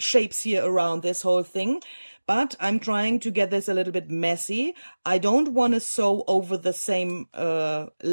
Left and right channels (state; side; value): inverted; both; correlation -1.00